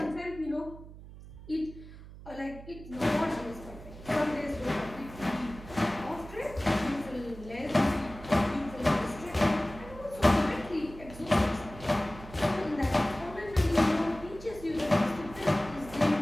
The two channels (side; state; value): right; noise; hum, 16 dB below the sound